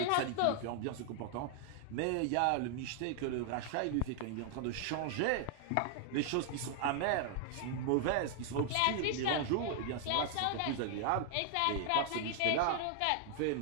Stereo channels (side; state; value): both; different; correlation 0.00